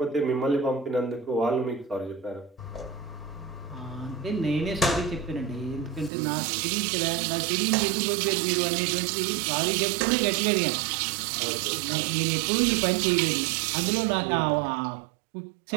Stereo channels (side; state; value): left; drops out; at 6.1 s